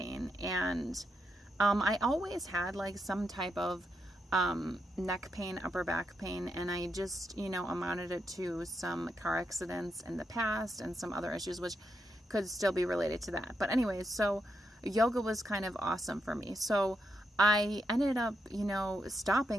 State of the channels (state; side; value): normal; both; correlation 0.83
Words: And I always had like some type of neck pain, upper back pain, and I just, amounted it to some car accidents in the past and some other issues, which could still be related to that. But anyways, so yoga was kind of awesome for me. So I ended up,